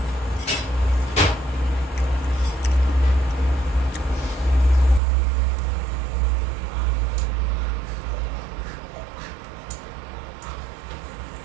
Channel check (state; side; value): drops out; left; at 5.0 s